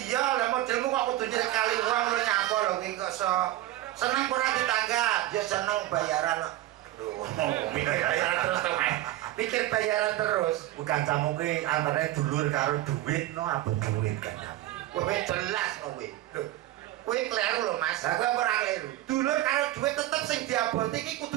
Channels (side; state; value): left; quieter; 15.1 dB